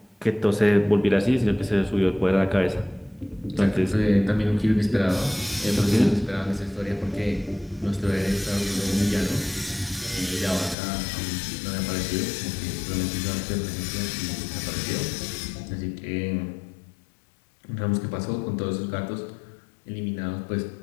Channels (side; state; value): right; drops out; at 10.8 s